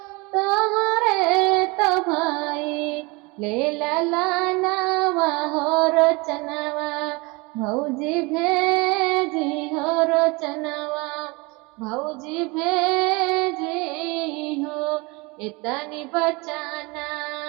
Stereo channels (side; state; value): left; quieter; 26.5 dB